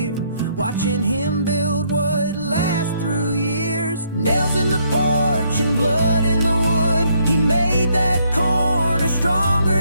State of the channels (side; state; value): both; inverted; correlation -0.70